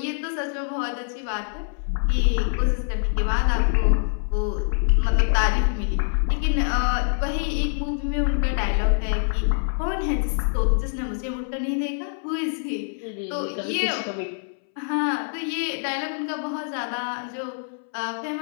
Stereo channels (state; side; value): silent; right; 62 dB below the other